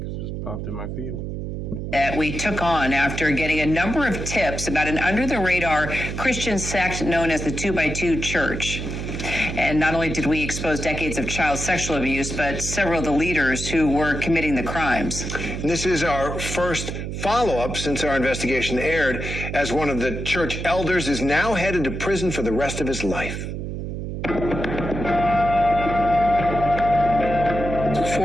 it just popped in my feed. That we took on after getting a number of tips about an under-the-radar Christian sect known as the 2x2 Church. And not only did we expose decades of child sexual abuse, but several of the leaders who were committing the crimes. This is our first follow-up since our investigation aired, as one of the church elders is now headed to prison for the rest of his life.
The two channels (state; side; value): noise; right; hum, 5 dB below the sound